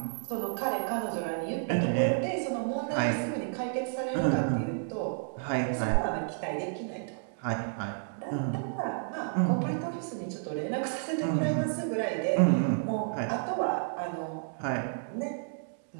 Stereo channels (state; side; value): silent; left; digital silence